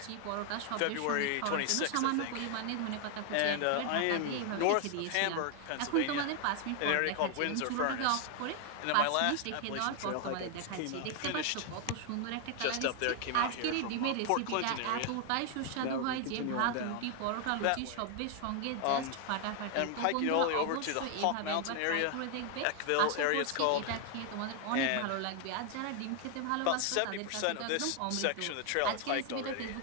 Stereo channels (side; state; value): both; different; correlation 0.00